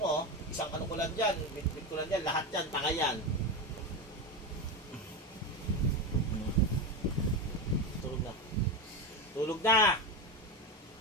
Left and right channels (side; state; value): both; normal; correlation 0.17